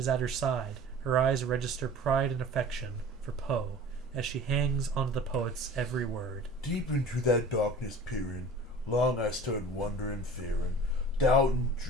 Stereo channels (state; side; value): normal; both; correlation 0.42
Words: at her side. Her eyes register pride and affection for Poe as she hangs onto the poet's every word. Deep into that darkness peering, long I stood wondering, fearing, doubting,